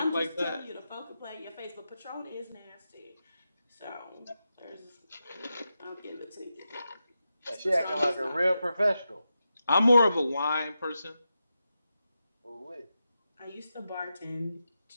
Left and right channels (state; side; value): inverted; both; correlation -0.89